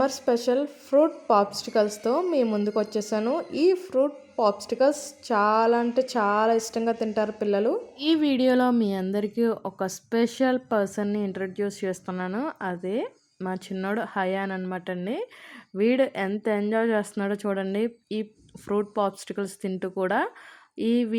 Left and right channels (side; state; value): both; identical; correlation 1.00